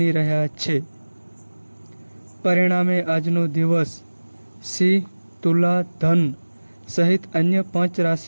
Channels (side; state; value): both; inverted; correlation -1.00